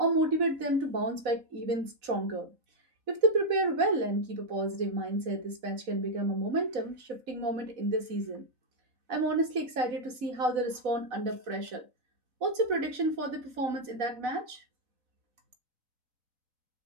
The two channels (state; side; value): late; left; 4.1 ms